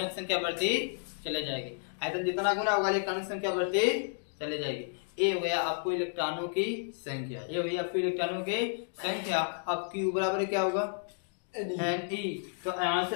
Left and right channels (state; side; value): silent; right; digital silence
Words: की संख्या बढ़ती चले जाएगी। आयतन जितना गुना होगा इलेक्ट्रॉनों की संख्या बढ़ती चले जाएगी। ये हो गया आपको इलेक्ट्रॉनों की संख्या, ये हो गई आपको इलेक्ट्रॉनों की संख्या। अब Q बराबर क्या होगा? Ne। तो यहाँ से